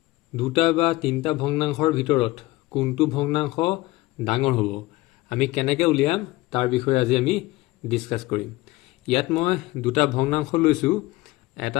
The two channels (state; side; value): quieter; right; 19.5 dB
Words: দুটা বা তিনটা ভগ্নাংশৰ ভিতৰত কোনটো ভগ্নাংশ ডাঙৰ হ'ব আমি কেনেকৈ উলিয়াম তাৰ বিষয়ে আজি আমি ডিসকাস কৰিম। ইয়াত মই দুটা ভগ্নাংশ লৈছো, এটা